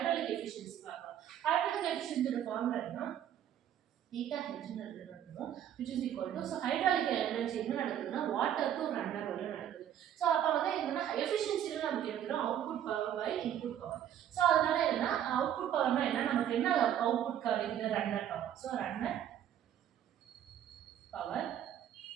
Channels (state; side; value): quieter; left; 10.4 dB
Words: எஃபிஷியன்சி பார்க்கலாம். ஹைட்ராலிக் எஃபிஷியன்சியோட ஃபார்முலா என்ன theta h நடக்குதுன்னு which is equal to so hydraulic energy என்ன நடக்குதுன்னா water to runner வரை நடக்குது. சோ அப்ப வந்து என்னன்னா எஃபிஷியன்சில நமக்கு எடுத்துறோம் output power by input power. So அதனால என்ன அவுட்புட் பவர்னா என்ன நமக்கு என்ன அவுட்புட் கிடைக்குது runner power. So runner power